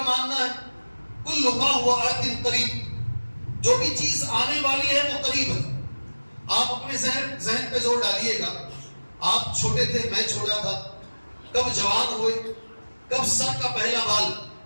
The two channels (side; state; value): both; inverted; correlation -1.00